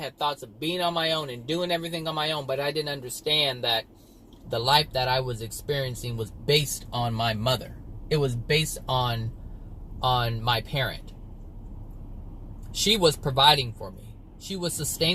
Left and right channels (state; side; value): identical; both; correlation 1.00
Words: thoughts of being on my own and doing everything on my own, but I didn't understand that the life that I was experiencing was based on my mother. It was based on my parent. She was providing for me. She was